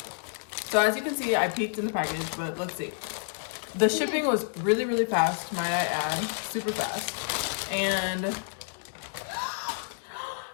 so as you can see, I peeked in the package, but let's see. The shipping was really fast, might I add, super fast. And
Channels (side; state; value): right; silent; digital silence